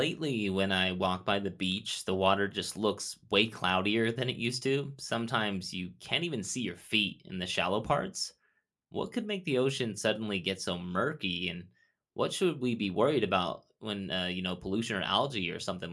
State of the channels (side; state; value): both; identical; correlation 1.00